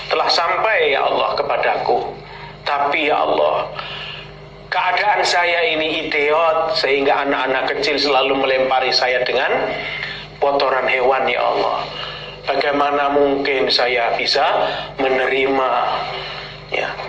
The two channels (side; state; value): both; identical; correlation 1.00